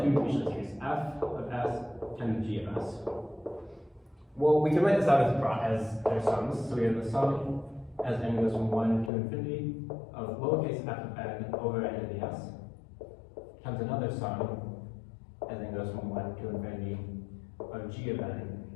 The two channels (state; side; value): drops out; right; at 9.1 s